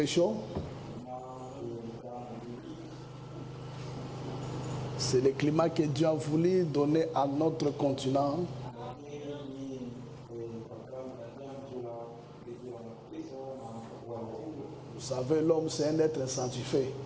chaud. C'est le climat que Dieu a voulu donner à notre continent. Vous savez, l'homme, c'est un être sanctifié.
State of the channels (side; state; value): both; identical; correlation 1.00